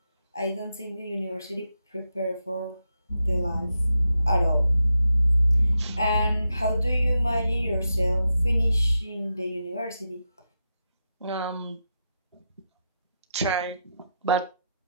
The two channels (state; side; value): inverted; both; correlation -0.86